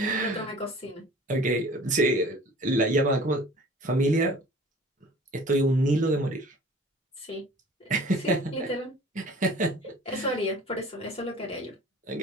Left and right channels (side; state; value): both; normal; correlation 0.46